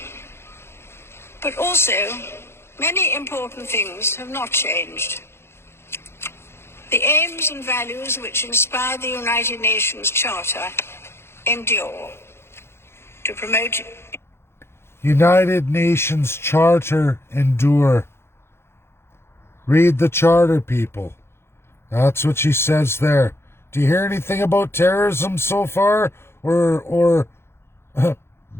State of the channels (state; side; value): late; right; 0.12 ms